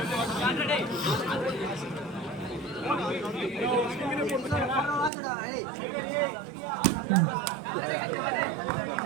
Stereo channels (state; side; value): drops out; left; at 5.1 s